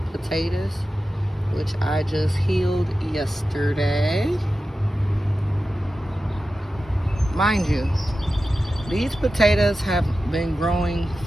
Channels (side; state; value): both; normal; correlation 0.93